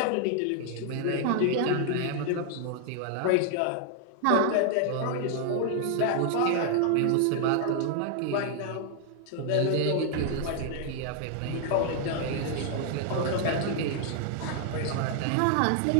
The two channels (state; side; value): different; both; correlation 0.00